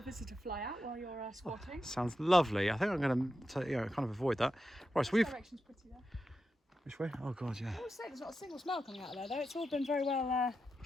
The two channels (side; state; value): both; normal; correlation 0.89